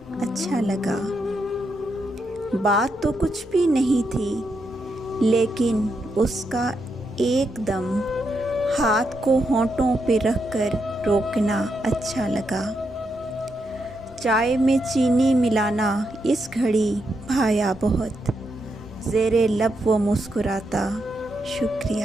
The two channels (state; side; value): normal; both; correlation 0.82